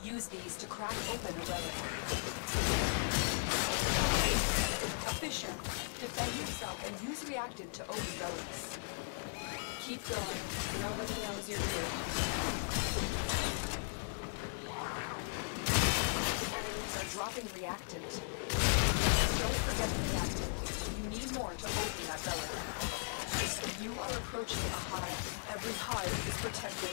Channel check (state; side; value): silent; right; digital silence